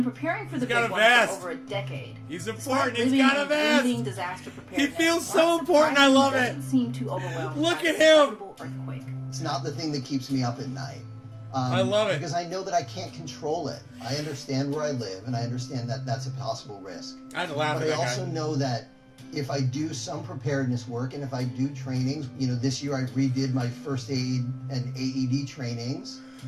preparing for the big one for over a decade. He's important. He's got a vest. Disaster He feels so important. I love it. Seem too overwhelmed. Look at him. Earthquake. It's not the thing that keeps me up at night. I love it. Because I know that I can't control it. I understand where I live, and I understand that that's a possible risk. I'd laugh but at I that also guy. know that if I do some preparedness work, and if I do trainings, you know, this year I redid my first aid and AED trainings,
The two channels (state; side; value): identical; both; correlation 1.00